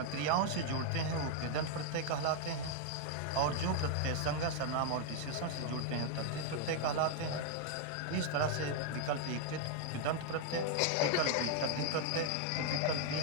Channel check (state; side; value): different; both; correlation 0.00